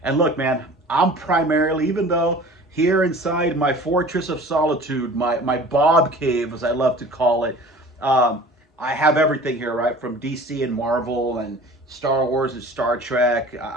And look, man, I'm primarily, even though here inside my fortress of solitude, my Bob cave, as I love to call it, I have everything here, right? From DC and Marvel and Star Wars and Star Trek,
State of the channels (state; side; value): normal; both; correlation 0.43